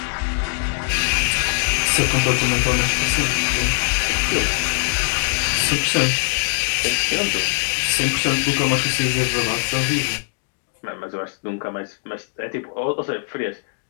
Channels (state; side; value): silent; right; digital silence